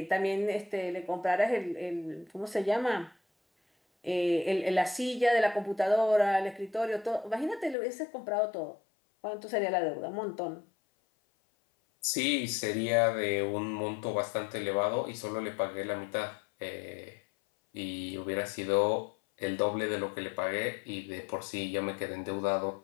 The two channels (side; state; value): right; drops out; at 7.8 s